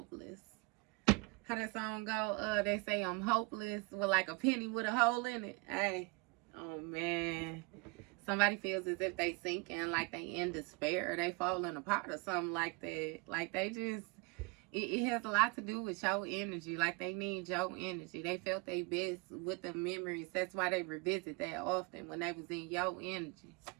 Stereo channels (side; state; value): left; quieter; 28.3 dB